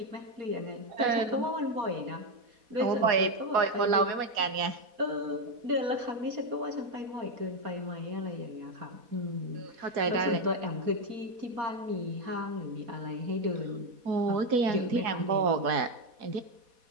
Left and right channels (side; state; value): left; late; 4.1 ms